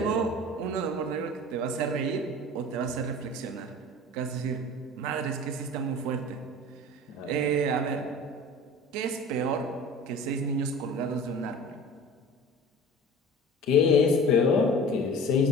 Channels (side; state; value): both; normal; correlation 0.39